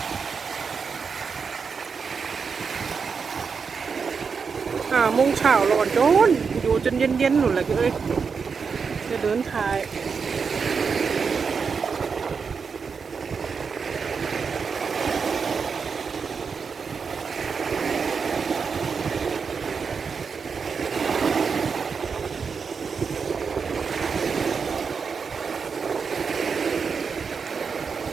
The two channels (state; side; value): quieter; left; 5.6 dB